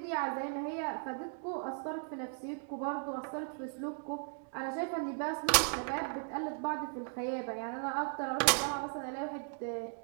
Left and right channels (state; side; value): silent; left; 53 dB below the other